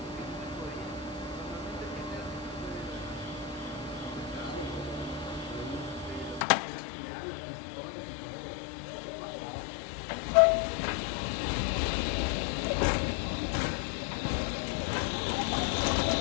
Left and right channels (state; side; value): drops out; right; at 6.5 s